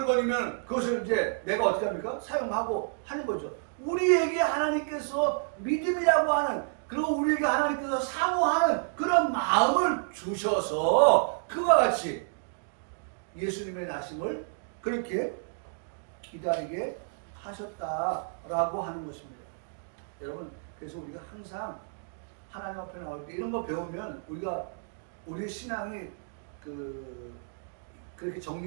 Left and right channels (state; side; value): silent; left; digital silence